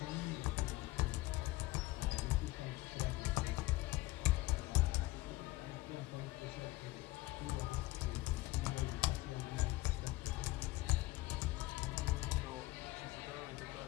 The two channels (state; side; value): quieter; right; 19.4 dB